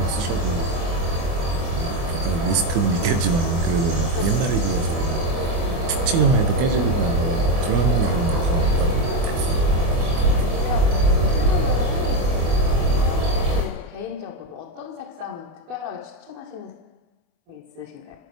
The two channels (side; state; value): left; late; 24 ms